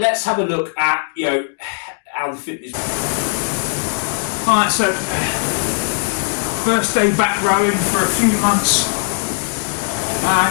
have a look at, how the fitness... So, first day back rowing for a few months, and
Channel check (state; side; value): silent; right; digital silence